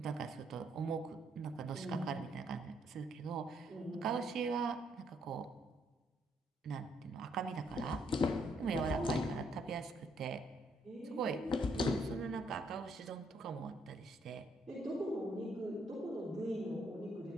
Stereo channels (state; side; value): normal; both; correlation 0.72